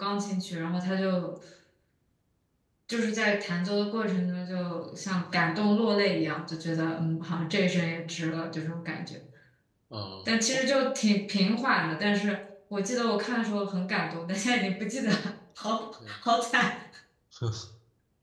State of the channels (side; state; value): both; identical; correlation 1.00